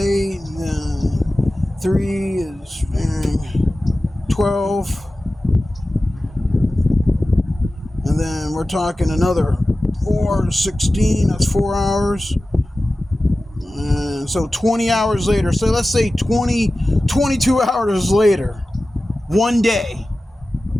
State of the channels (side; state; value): both; normal; correlation 0.95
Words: and then 3 is 12, and then we're talking another 4, 16, that's 4 hours. And so 20 hours later, so let's say 22 hours later, one day,